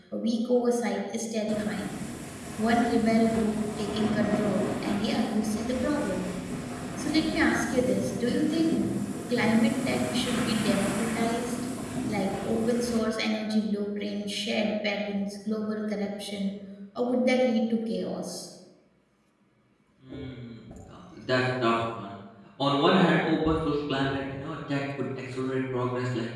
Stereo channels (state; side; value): identical; both; correlation 1.00